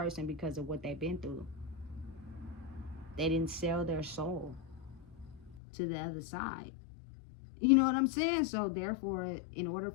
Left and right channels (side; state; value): right; drops out; at 5.6 s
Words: because of what they've been through. They didn't sell their soul to the other side. You know what I'm saying? So therefore, in order